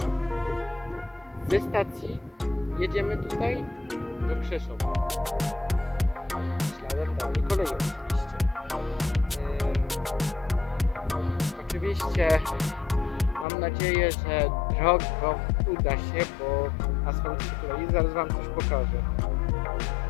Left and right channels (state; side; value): drops out; right; at 13.5 s